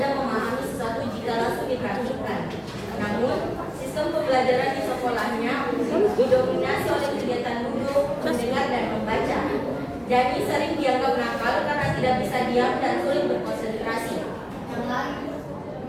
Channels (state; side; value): identical; both; correlation 1.00